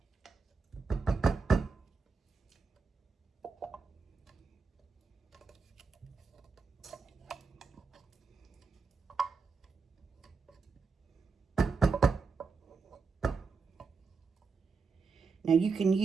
Now, you can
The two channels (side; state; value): left; quieter; 4.8 dB